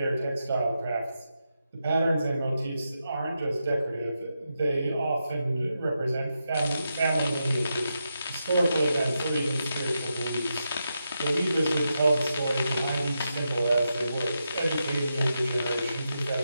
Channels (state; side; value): inverted; both; correlation -0.86